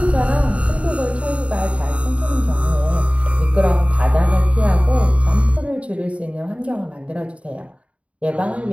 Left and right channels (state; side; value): late; left; 0.063 ms